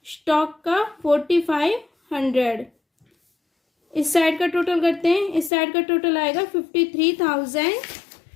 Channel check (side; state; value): right; drops out; at 5.5 s